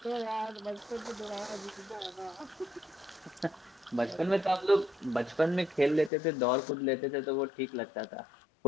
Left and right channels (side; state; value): right; drops out; at 6.1 s